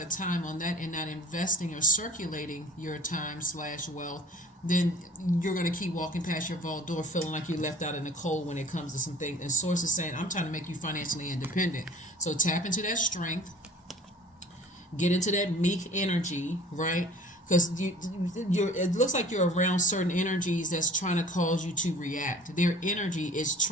of time on that and not investing or circulating your time/wealth, then you're going to keep walking past your vault door feeling like you're left out in the cold when it comes to some things. And Source is saying, I'm trying to make you financially independent. So tap into that strength. Get into that meek energy, right? Because it looks like you're around certain energies that's trying to cause you to react. Their energy is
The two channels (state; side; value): normal; both; correlation 0.48